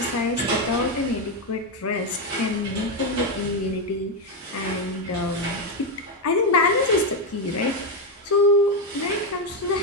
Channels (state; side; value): normal; both; correlation 0.07